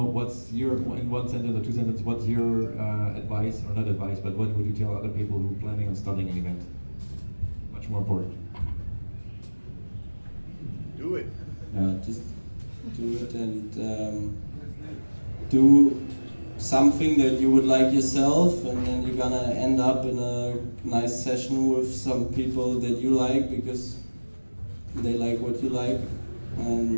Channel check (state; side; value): inverted; both; correlation -1.00